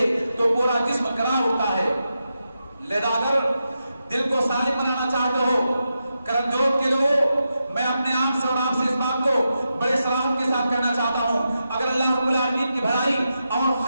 تو پورا جسم کرا اٹھتا ہے۔ لہذا اگر دل کو سالم بنانا چاہتے ہو کرم جوت کے لوگوں، میں اپنے آپ سے اور آپ سے اس بات کو بڑے صراحت کے ساتھ کہنا چاہتا ہوں، اگر اللہ رب العالمین کی بھلائی اور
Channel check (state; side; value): inverted; both; correlation -0.88